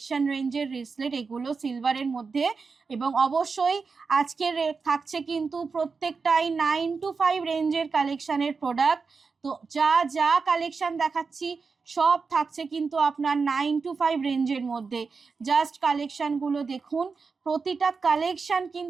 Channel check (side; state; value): left; quieter; 4.9 dB